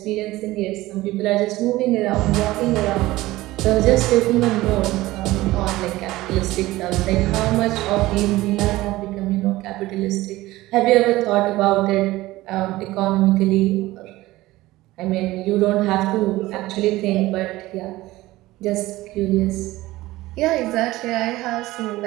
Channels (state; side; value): quieter; left; 17.9 dB